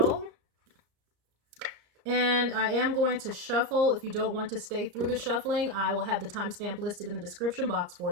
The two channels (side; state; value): left; late; 34 ms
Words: And I am going to shuffle. If you don't want to stay through the shuffling, I will have the timestamp listed in the description box for